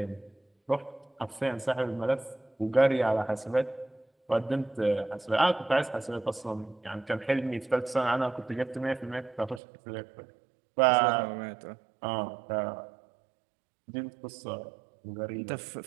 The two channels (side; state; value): left; drops out; at 9.6 s